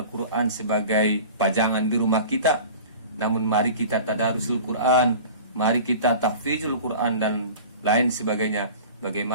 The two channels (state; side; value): inverted; both; correlation -0.39